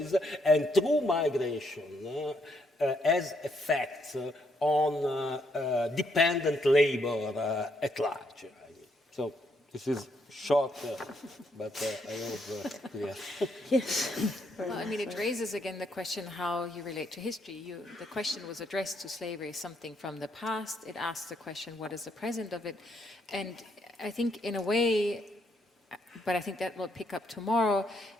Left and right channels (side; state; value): both; normal; correlation 0.74